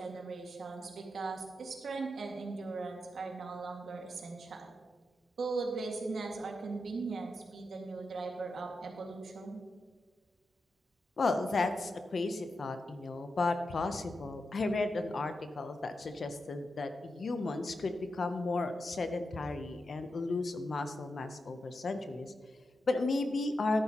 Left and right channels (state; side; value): normal; both; correlation 0.88